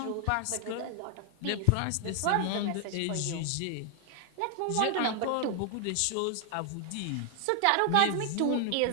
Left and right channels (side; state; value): both; different; correlation 0.00